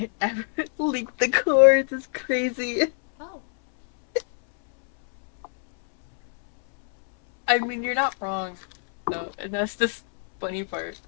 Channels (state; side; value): silent; right; 62 dB below the other